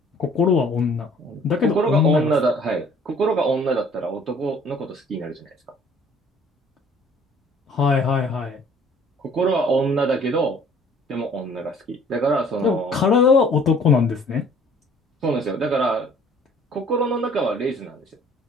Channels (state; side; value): normal; both; correlation 0.55